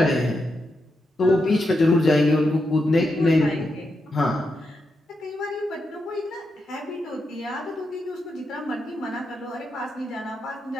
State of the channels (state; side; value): normal; both; correlation 0.85